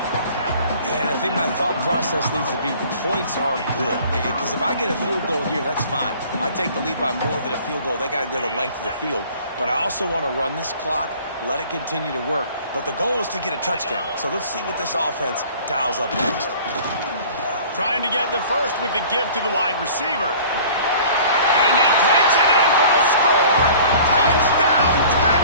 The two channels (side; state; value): both; inverted; correlation -0.48